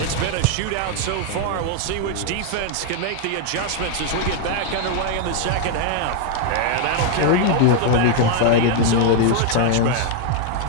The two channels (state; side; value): different; both; correlation 0.00